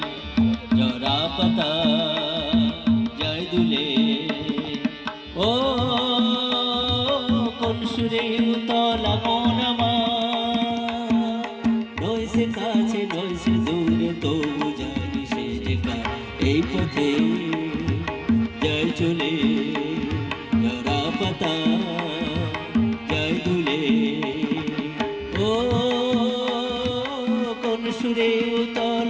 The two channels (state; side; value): identical; both; correlation 1.00